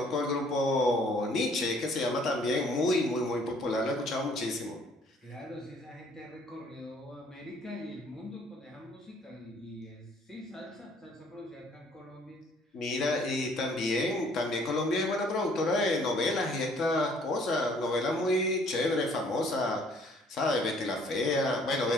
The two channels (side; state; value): both; normal; correlation 0.60